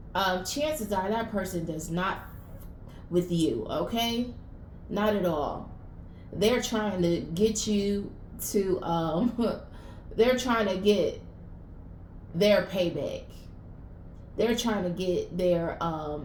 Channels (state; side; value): identical; both; correlation 1.00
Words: chances are that person does not with you, okay? Not at all. They're trying to get you to they're trying to get their payback. They're trying to get